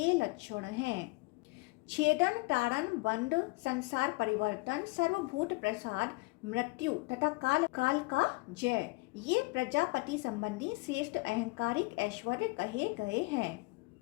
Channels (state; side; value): quieter; right; 25.4 dB